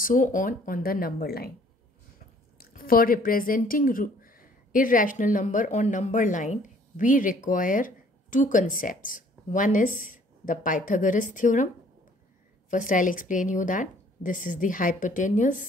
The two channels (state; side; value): normal; both; correlation 0.58